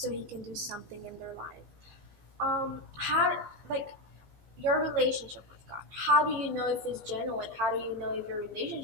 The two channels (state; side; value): late; left; 15 ms